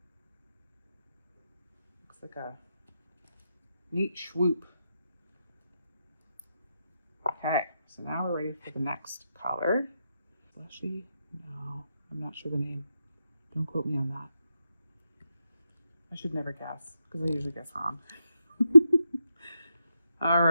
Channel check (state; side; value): inverted; both; correlation -0.84